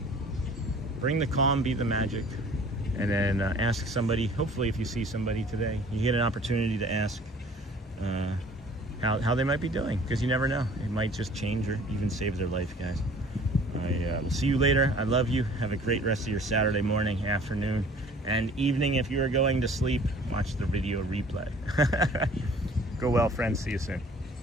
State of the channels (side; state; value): both; normal; correlation 0.51